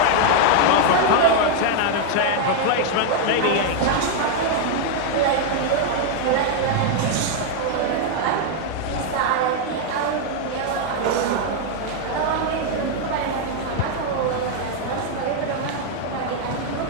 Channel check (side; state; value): both; different; correlation 0.00